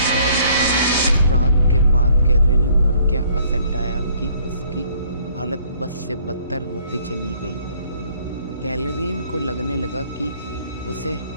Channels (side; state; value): both; inverted; correlation -0.61